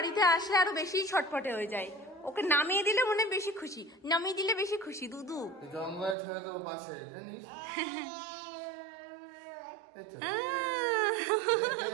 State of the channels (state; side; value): drops out; left; at 6.2 s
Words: আসলে আরো বেশি ছটফটে হয়ে যায়। ওকে নামিয়ে দিলে মনে বেশি খুশি, নামিয়ে দিলে বেশি খুশি। দুদু জঙ্গলে ছেড়ে দেবো পাশে, জানিস?